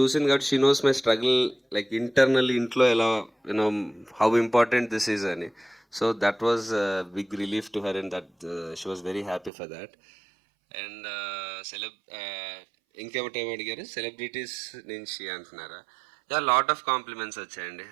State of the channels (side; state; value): left; drops out; at 9.5 s